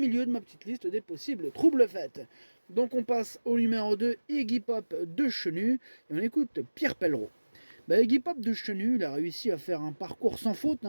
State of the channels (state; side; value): inverted; both; correlation -1.00